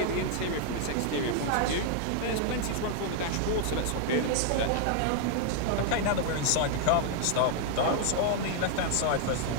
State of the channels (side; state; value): both; different; correlation 0.00